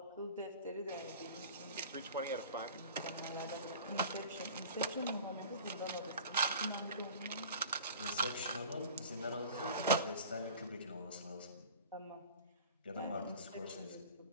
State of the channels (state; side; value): inverted; both; correlation -0.42